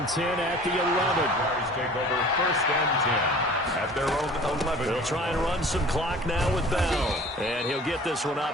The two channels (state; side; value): normal; both; correlation 0.45